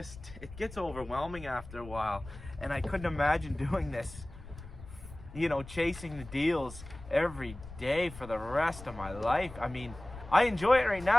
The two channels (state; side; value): noise; left; rumble, 15 dB below the sound